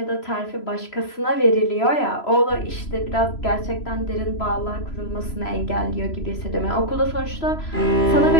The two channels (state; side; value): late; right; 3.0 ms